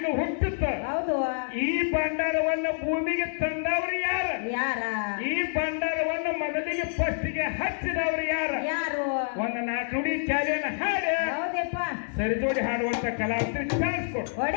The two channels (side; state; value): right; silent; 60 dB below the other